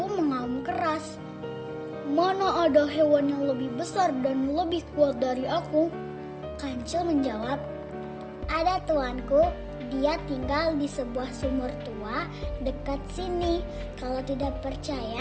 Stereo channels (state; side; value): identical; both; correlation 1.00